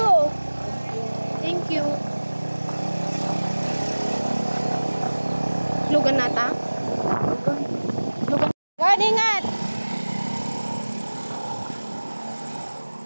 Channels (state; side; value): inverted; both; correlation -1.00